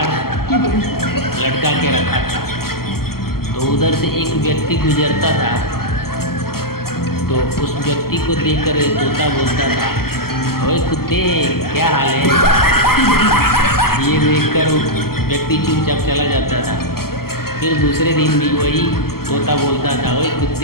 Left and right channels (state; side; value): late; right; 0.93 ms